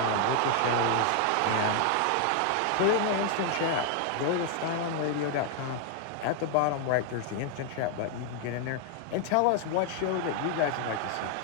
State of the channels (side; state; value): both; different; correlation 0.00